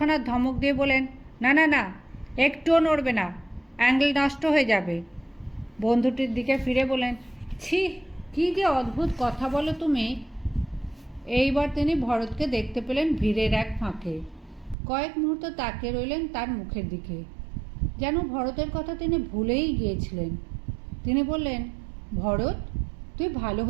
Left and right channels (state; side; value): drops out; left; at 14.8 s